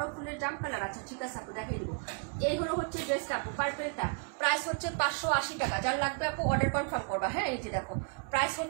ফুলের জাম কালার আছে, ঠিক আছে আপু দেখিয়ে দিব। এই হলো হচ্ছে ড্রেসটা আপু, পার্পেলটা। প্রাইস হচ্ছে 580 টাকা। যার লাগবে আপু অর্ডার কনফার্ম করবা। হ্যাঁ, এই যে দেখো প্রাইস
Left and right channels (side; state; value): left; quieter; 39.7 dB